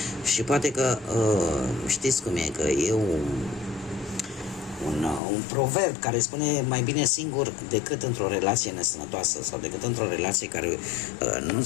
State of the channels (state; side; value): drops out; right; at 5.2 s